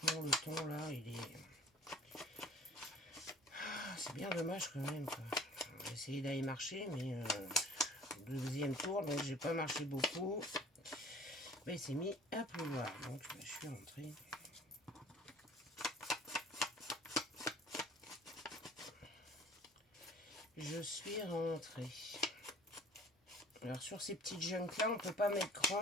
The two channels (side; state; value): both; normal; correlation 0.49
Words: le temps, là, il est... C'est bien dommage, quand même, quoi. J'ai essayé d'aller marcher, mais... deuxième tour, donc j'ai pas marché beaucoup. Mais il s'est mis à pleuvoir. Donc, je suis rentrée. Je suis rentrée. Alors sur ces petites junks là, on peut pas mettre